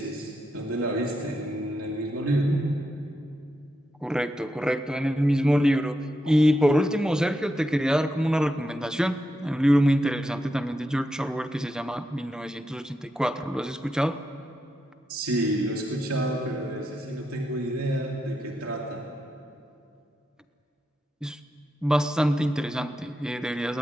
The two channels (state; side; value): normal; both; correlation 0.85